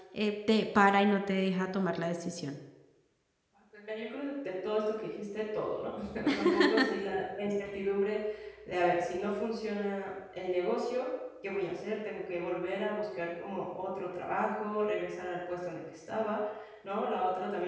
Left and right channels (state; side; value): identical; both; correlation 1.00